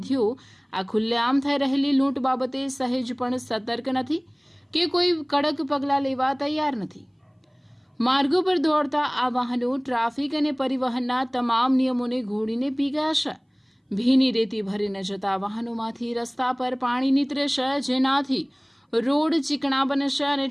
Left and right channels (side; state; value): both; identical; correlation 1.00